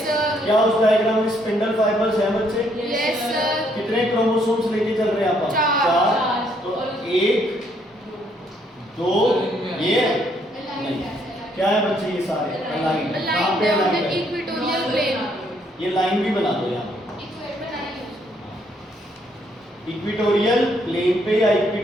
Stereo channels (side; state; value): both; normal; correlation 0.70